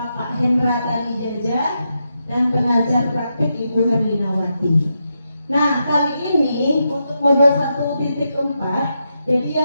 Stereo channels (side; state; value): both; inverted; correlation -0.85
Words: Hendra Tani Jaja dan pengajar praktik Ibu Herlinawati. Nah, kali ini untuk modul 1.4, jadi